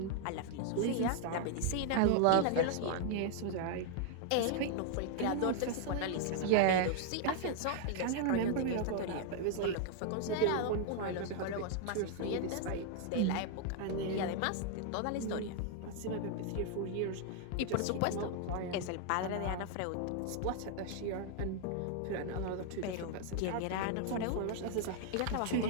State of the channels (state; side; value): different; both; correlation 0.00